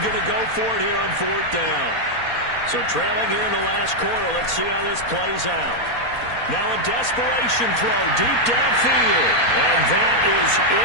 going to go for it here on 4th down. So trailing here in the last quarter, let's see how this plays out. Now a desperation throw deep downfield. And that is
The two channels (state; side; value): late; right; 4.2 ms